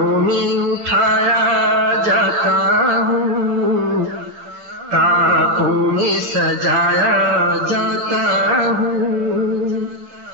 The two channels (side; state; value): left; late; 8.0 ms